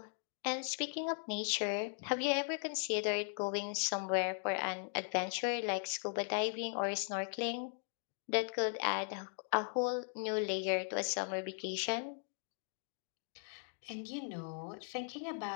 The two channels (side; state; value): right; silent; 52 dB below the other